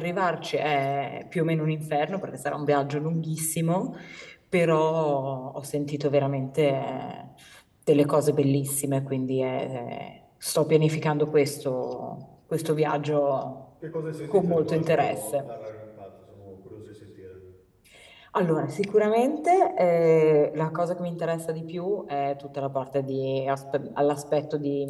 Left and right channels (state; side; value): identical; both; correlation 1.00